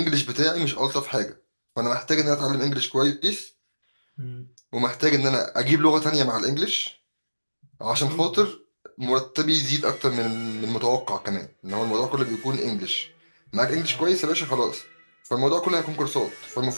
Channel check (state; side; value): inverted; both; correlation -1.00